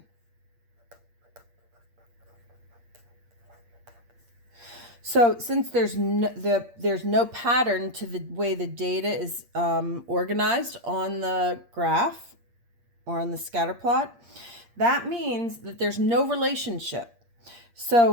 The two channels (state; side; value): late; left; 8.6 ms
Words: So since there's no pattern to the way the data is organized on the graph or on the scatter plot, that means that there's no relationship.